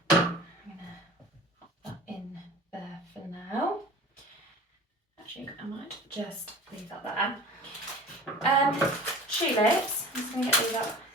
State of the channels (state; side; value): normal; both; correlation 0.39